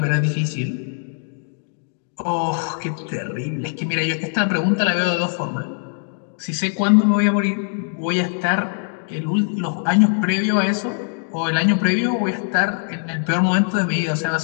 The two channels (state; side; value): silent; right; digital silence